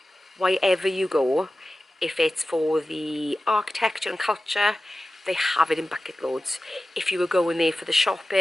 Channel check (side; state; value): both; normal; correlation 0.95